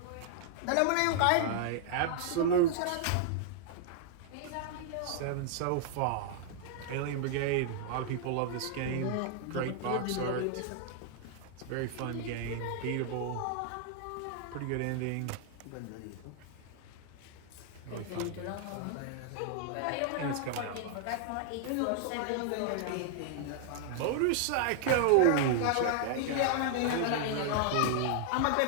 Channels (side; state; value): both; different; correlation 0.00